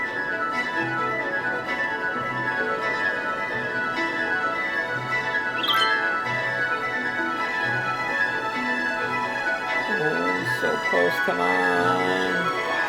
So close, come on.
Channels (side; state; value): both; identical; correlation 1.00